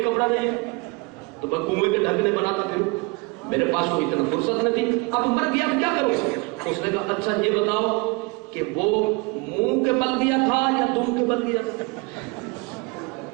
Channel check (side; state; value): left; quieter; 27.5 dB